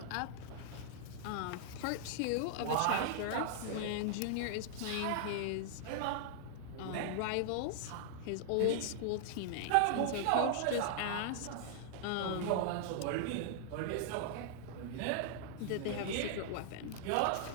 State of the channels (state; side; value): different; both; correlation -0.01